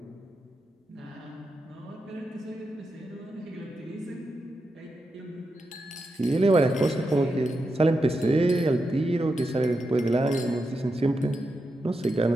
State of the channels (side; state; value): both; normal; correlation 0.87